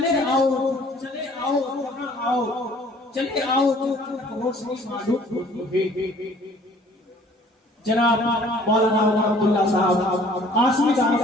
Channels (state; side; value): normal; both; correlation 0.55